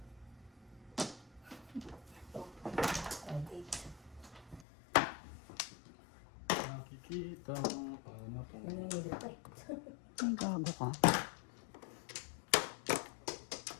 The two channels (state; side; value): drops out; right; at 4.7 s